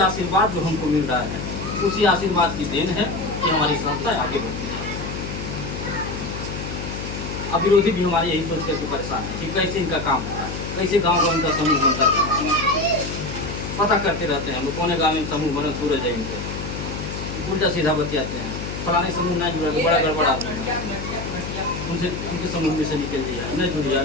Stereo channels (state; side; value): noise; left; hum, 6 dB below the sound